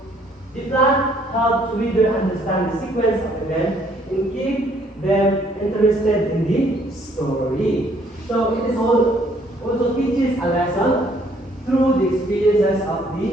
the plan helps reader understand the sequence of events and keep them interested in the story. So it is also teaches a lesson through the experiences of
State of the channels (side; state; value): both; normal; correlation 0.64